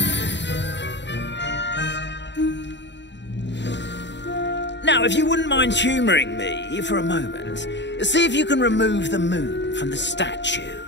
Now, if you wouldn't mind humouring me for a moment, see if you can remove the moon from the statue.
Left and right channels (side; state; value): right; late; 0.52 ms